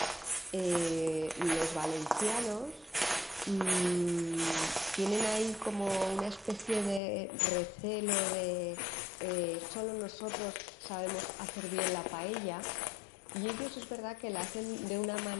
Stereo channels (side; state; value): right; drops out; at 7.0 s